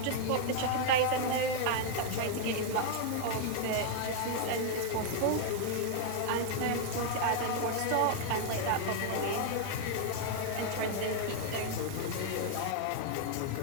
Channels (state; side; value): different; both; correlation 0.00